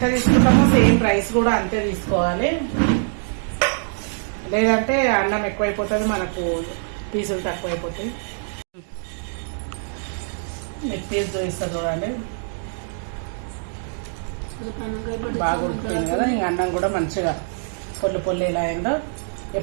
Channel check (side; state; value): left; silent; 63 dB below the other